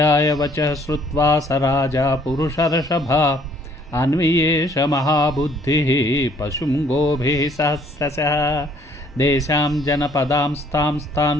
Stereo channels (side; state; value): both; normal; correlation 0.62